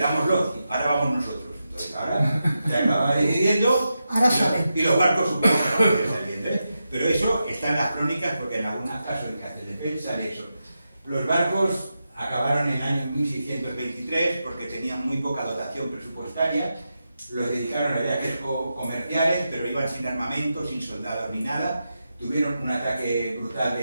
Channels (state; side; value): inverted; both; correlation -0.89